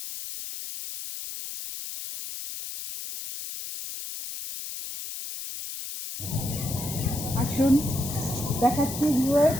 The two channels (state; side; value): noise; left; hiss, 8 dB below the sound